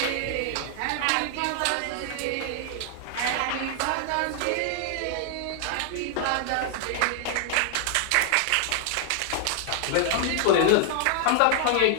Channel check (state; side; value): different; both; correlation 0.00